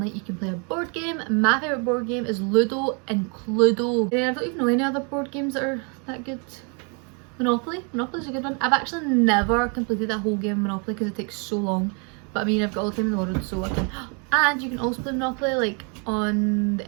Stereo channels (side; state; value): left; quieter; 35.9 dB